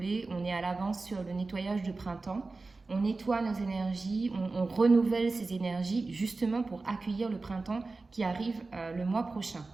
on est à l'avance sur le nettoyage de printemps. On nettoie nos énergies, on renouvelle ces énergies justement pour accueillir le printemps qui arrive le mois prochain.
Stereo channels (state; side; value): quieter; left; 3.6 dB